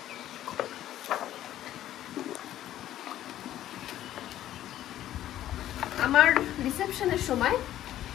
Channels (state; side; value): quieter; right; 12.7 dB